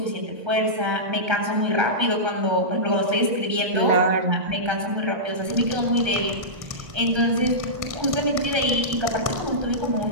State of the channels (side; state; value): left; late; 1.3 ms